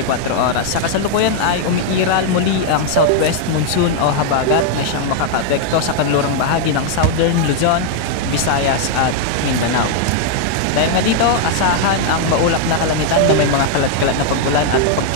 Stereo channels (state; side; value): different; both; correlation 0.00